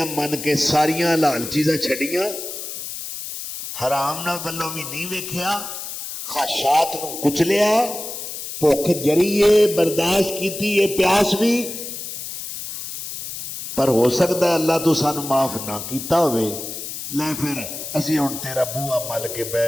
من کے ساریاں حلال چیزاں چھڑیاں، حرام نہ گلوں بھی نہیں ویکھیا، خواہشات نو کچلیا، بھوک جریے برداشت کیتی ہے، پیاس بھی، پر ہو سکتا ہے اللہ تو سانو معاف نہ کیتا ہوئے، لے پھر اسی ہن تیرا بوہا مل کے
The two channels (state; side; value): noise; left; hiss, 8 dB below the sound